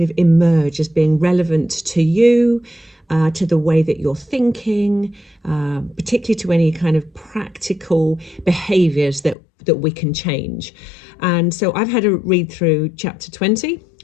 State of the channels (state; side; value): drops out; right; at 9.3 s